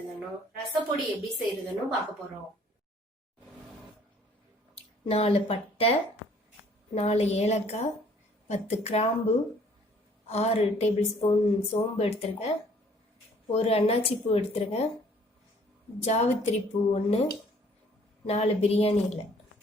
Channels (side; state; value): both; normal; correlation 0.58